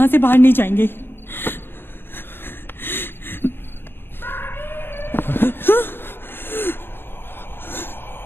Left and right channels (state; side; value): late; right; 0.10 ms